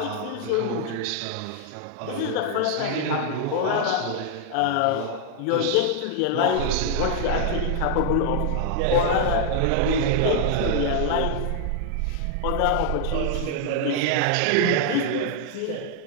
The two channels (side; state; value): both; different; correlation 0.00